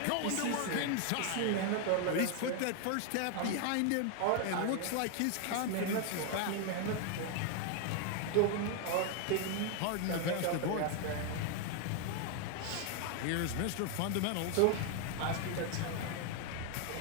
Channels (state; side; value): different; both; correlation 0.00